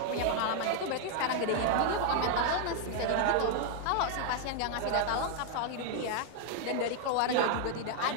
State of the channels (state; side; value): different; both; correlation 0.00